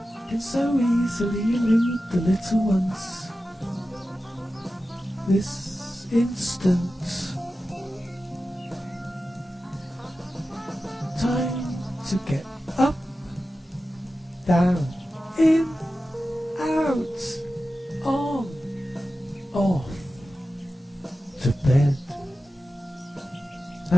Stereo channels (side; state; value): both; normal; correlation 0.93